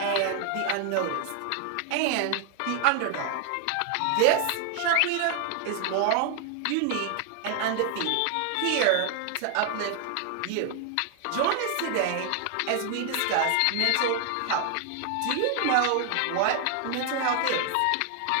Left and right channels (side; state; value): both; different; correlation 0.00